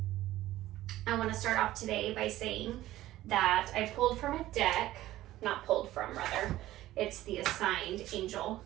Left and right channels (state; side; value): quieter; left; 15.2 dB